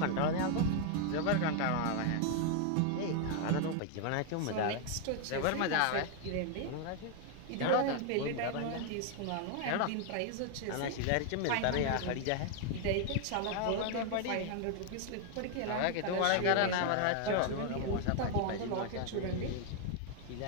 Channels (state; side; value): different; both; correlation 0.00